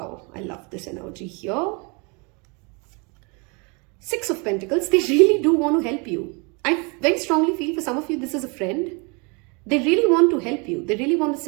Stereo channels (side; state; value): left; quieter; 31.4 dB